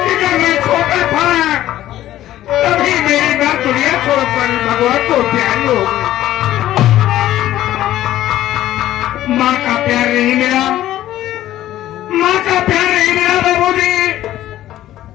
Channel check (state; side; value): quieter; right; 13.6 dB